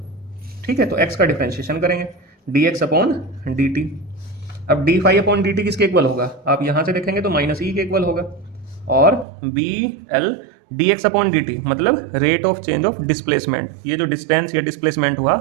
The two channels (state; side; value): drops out; left; at 9.2 s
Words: ठीक है, तो x का डिफरेंशिएशन करेंगे dx/dt। अब d∅/dt किसके इक्वल होगा, आप यहां से देखेंगे तो -e के इक्वल होगा, और BL dx/dt मतलब rate of change of displacement, ये जो डिस्टेंस या डिस्प्लेसमेंट हुआ